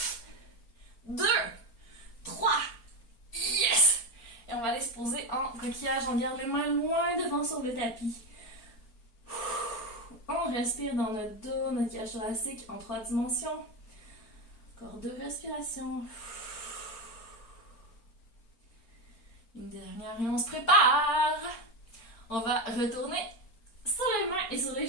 2, 3. Yes! Et on va aller se poser en coquillage. On garde les mains loin devant sur le tapis. On respire dans notre dos, notre cage thoracique en 3 dimensions. Encore 2 respirations. Une dernière et on se prépare. On va retourner sur les mains et sur les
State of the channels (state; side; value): late; right; 4.4 ms